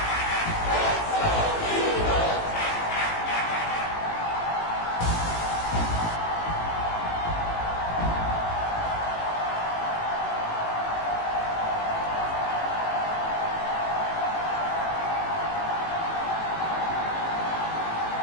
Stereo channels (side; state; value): right; late; 18 ms